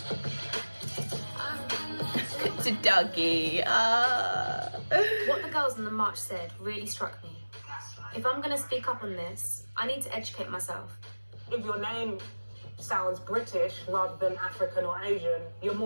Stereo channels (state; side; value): inverted; both; correlation -1.00